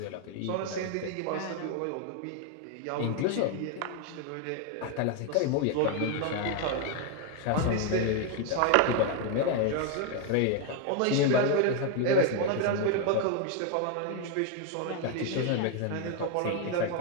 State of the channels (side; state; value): both; different; correlation 0.01